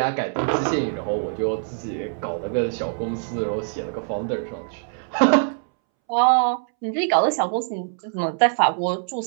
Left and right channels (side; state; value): left; silent; 63 dB below the other